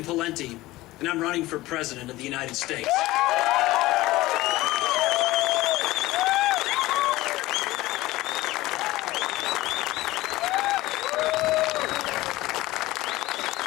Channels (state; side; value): quieter; right; 18.1 dB